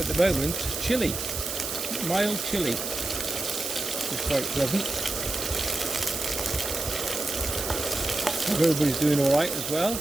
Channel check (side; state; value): right; noise; hiss, 4 dB below the sound